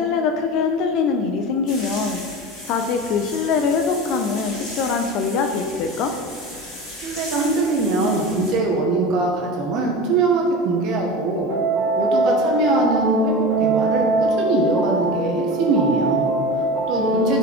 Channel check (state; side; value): normal; both; correlation 0.30